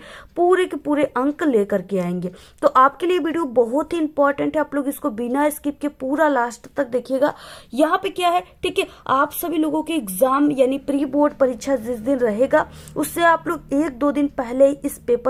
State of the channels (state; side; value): identical; both; correlation 1.00